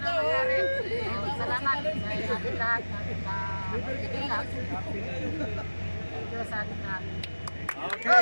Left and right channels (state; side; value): inverted; both; correlation -1.00